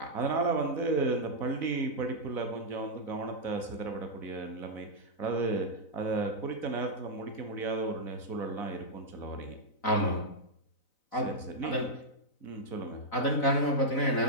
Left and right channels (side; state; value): right; late; 4.0 ms